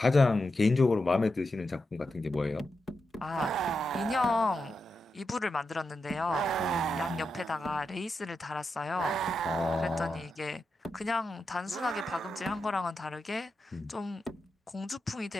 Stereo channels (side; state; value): both; normal; correlation 0.88